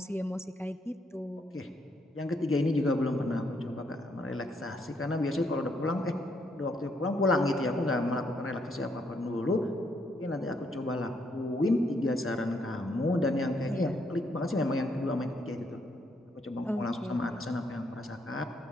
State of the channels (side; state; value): both; normal; correlation 0.73